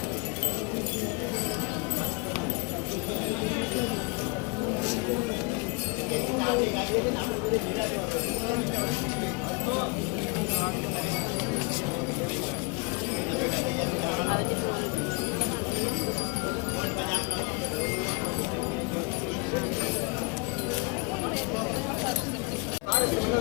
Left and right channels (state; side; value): quieter; right; 31.2 dB